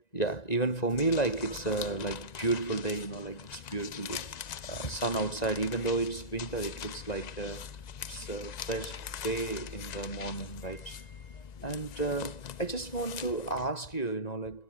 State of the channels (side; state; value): right; late; 1.9 ms